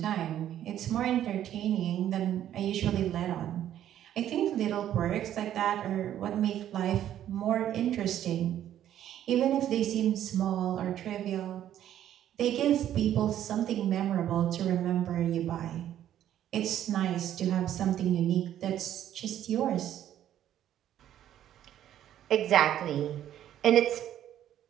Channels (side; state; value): left; quieter; 11.3 dB